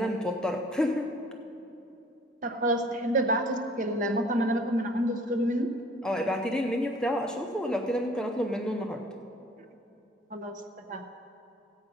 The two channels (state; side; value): normal; both; correlation 0.53